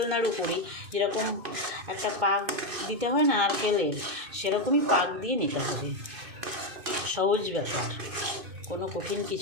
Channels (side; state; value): left; late; 2.5 ms